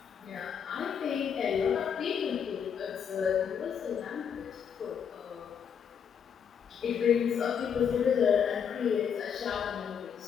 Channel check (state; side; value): quieter; right; 7.5 dB